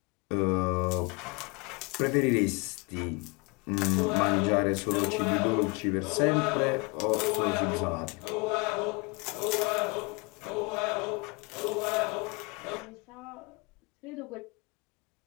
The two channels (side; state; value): right; quieter; 29.2 dB